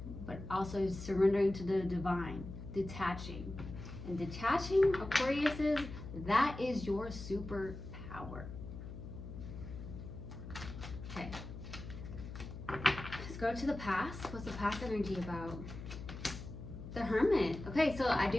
But also surrendering to the divine, detaching. And detaching, Aquariuses, that is your superpower. Okay. Let's go to the past. What's the past energy about? The Hermit. Okay, so I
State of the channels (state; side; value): noise; left; hum, 10 dB below the sound